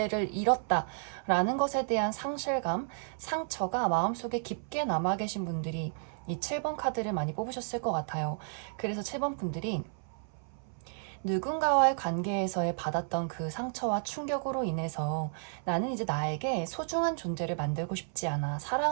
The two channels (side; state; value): left; silent; 56 dB below the other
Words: 잃었다라는 것에 대한 상실감, 상처가 마음속에 깊게 남아 계신 분들이 이 7번 카드를 많이 뽑으셨을 것 같아요. 그래서 7번 분들이 누군가와의 관계에서의 받았던 그 상처와 충격으로 인해서 나는 이제 나에게 소중한 존재를 만들고 싶지 않아,